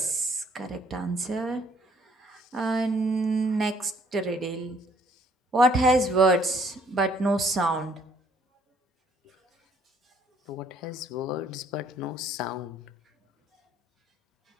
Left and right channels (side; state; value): both; normal; correlation 0.63